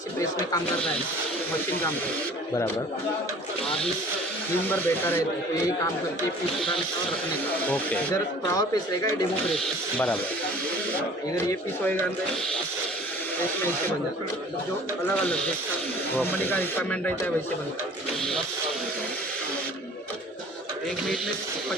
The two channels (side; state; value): both; normal; correlation 0.48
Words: से प्रेस में काम करता है, मशीन काम करता है બરાબર. आदमी दिन भर बैठा रहता है, तो यही काम करके पीस उठाने का और रखने का. ઓકે, इधर पावर प्रेस रहेगा, ये डेमो प्रेस है. બરાબર. इधर ये पीस होएगा अंदर प्रेस में ऐसे बन जाता है. जो अलग अलग जैसा कंपनी का रिक्वायरमेंट रहता है वैसे बनता है. 1 मिनट में